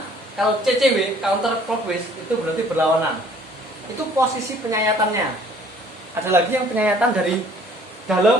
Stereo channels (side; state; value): both; normal; correlation 0.56